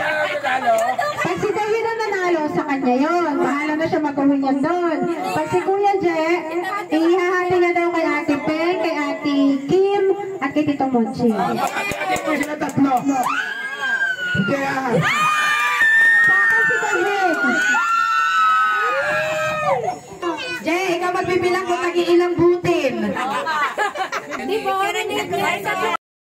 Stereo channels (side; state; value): both; identical; correlation 1.00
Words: si David ang nanalo, sa kanya yun. Bahala na siya mag-uwi niyan doon. Pag si Kuya J, ihahati na daw kay Ate Peng, kay Ate Kim, at kay Tito Monching. Ate ko sila 3. Kaya... Si David. Jay, ikaw magbibilang kung nag-iilang butin. Hindi po,